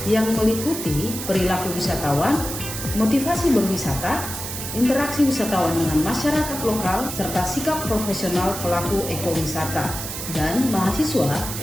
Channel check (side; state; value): right; noise; hiss, 7 dB below the sound